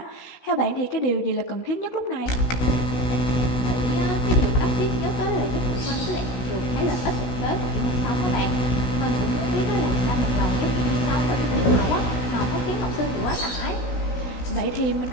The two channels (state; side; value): late; right; 16 ms